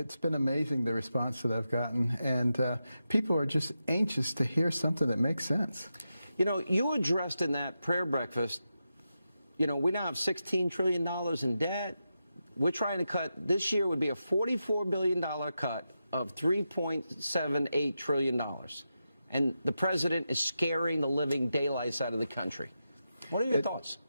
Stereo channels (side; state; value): both; inverted; correlation -0.88